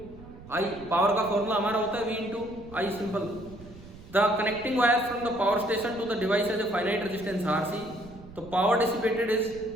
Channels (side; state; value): right; noise; rumble, 18 dB below the sound